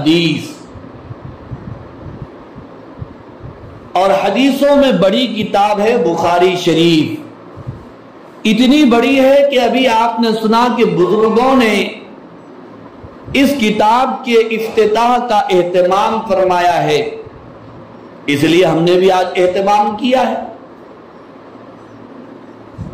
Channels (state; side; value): identical; both; correlation 1.00